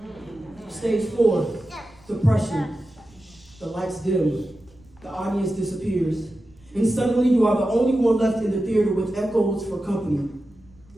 Stage four, depression. The lights dim. The audience disappears. And suddenly you are the only one left in the theater with echoes for company.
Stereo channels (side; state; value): right; noise; rumble, 28 dB below the sound